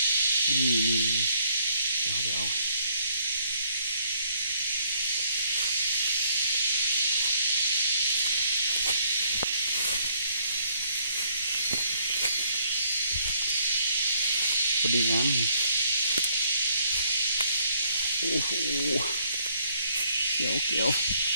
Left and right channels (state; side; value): inverted; both; correlation -0.66